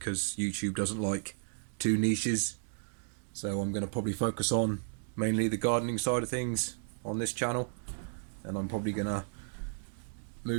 YouTube doesn't like two niches. So I'm going to probably focus on mainly the gardening side of things on this channel, and I'm probably going to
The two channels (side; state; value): left; silent; digital silence